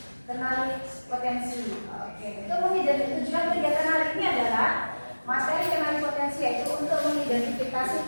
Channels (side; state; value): both; inverted; correlation -1.00